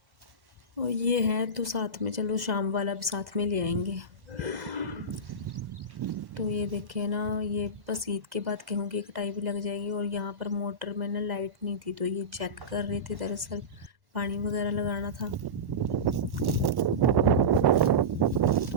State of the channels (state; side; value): late; left; 1.1 ms